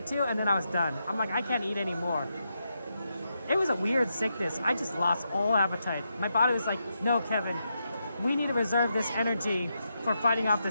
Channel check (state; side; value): inverted; both; correlation -0.84